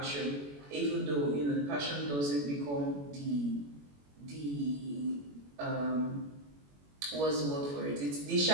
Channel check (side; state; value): left; late; 21 ms